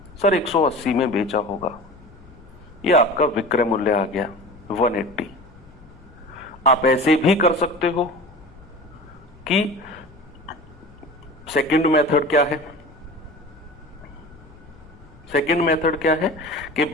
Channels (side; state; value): left; noise; rumble, 23 dB below the sound